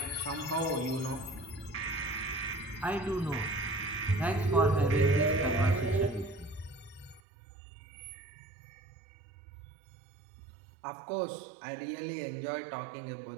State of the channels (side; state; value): left; drops out; at 7.2 s